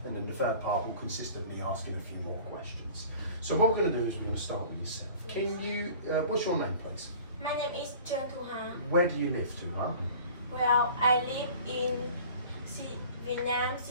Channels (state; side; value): inverted; both; correlation -0.45